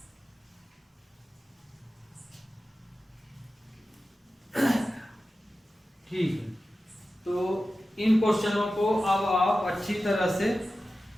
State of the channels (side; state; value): both; normal; correlation 0.94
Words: ठीक है, तो इन क्वेश्चनों को अब आप अच्छी तरह से